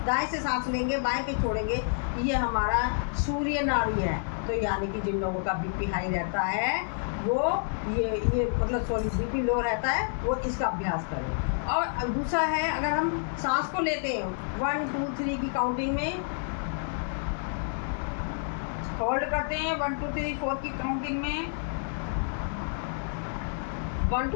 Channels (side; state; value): right; silent; digital silence